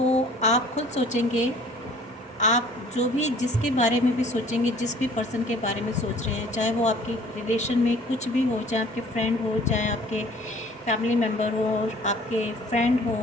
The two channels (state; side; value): normal; both; correlation 0.52